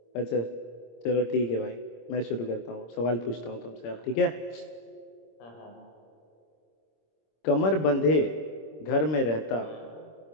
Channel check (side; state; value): right; late; 26 ms